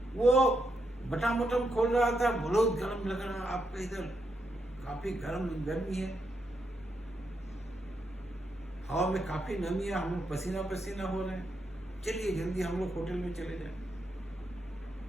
वो बटन बटन खोल रहा था, बहुत गर्म लग रहा, आपका इधर काफी गर्मी है, हवा में काफी नमी है, हम लोग पसीना पसीना हो रहे हैं, चलिए जल्दी हम लोग होटल में चले जाए।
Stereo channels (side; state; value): both; normal; correlation 0.81